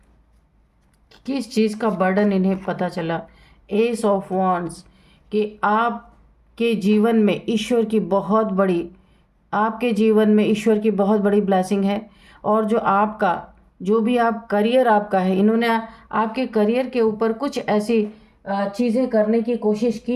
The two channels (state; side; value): identical; both; correlation 1.00